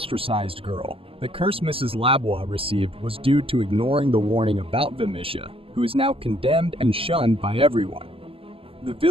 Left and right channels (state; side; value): late; left; 0.27 ms